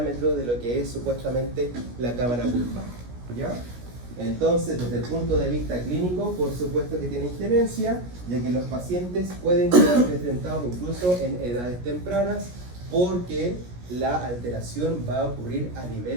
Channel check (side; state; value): left; late; 17 ms